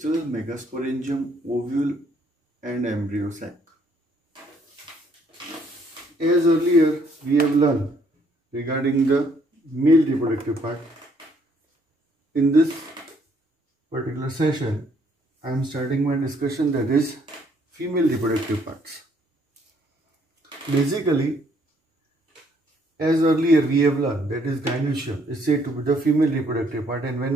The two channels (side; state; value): both; normal; correlation 0.66